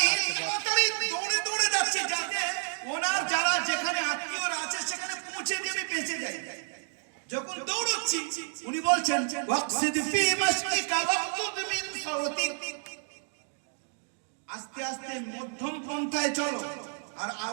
তাড়াতাড়ি দৌড়ে দৌড়ে যাচ্ছি যাতে ওনার যারা যেখানে আত্মীয়রা আছে সেখানে পৌঁছে দিয়ে আমি বেঁচে যাই। যখন দৌড়চ্ছি উনি বলছেন ওয়াকসিদ ফি মাশরিকা ওয়াকতুদ মিন সাওতিক, আস্তে আস্তে মধ্যম পন্থায় চলো আর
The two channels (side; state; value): left; silent; digital silence